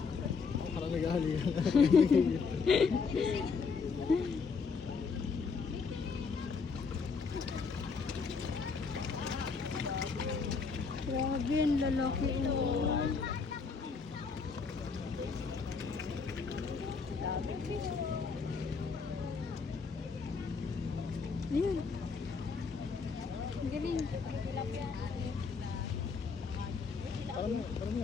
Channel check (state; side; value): quieter; right; 5.1 dB